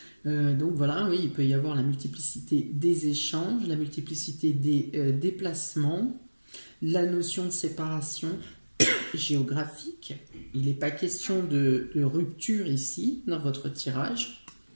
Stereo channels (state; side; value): inverted; both; correlation -1.00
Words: Donc voilà, oui, il peut y avoir la multiplicité des échanges, la multiplicité des déplacements, la notion de séparation géographique. Il n'est pas question de rupture ici, dans votre tirage.